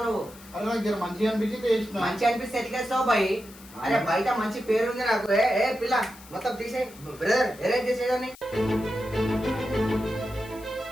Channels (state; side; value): noise; left; hiss, 21 dB below the sound